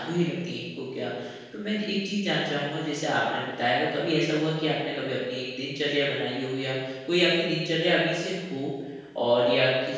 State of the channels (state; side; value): identical; both; correlation 1.00